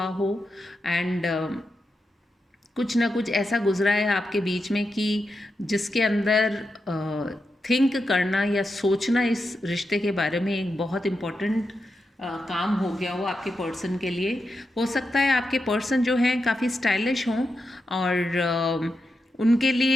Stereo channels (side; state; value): both; normal; correlation 0.87